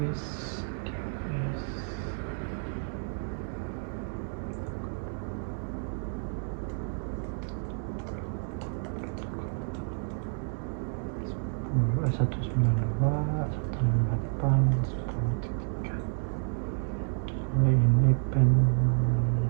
DNS. Satu sembilan dua satu delapan sepuluh tiga. Ini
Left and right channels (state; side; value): silent; left; 58 dB below the other